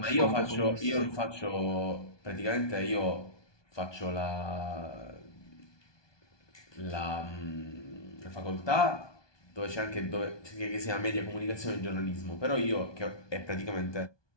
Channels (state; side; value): late; right; 1.2 ms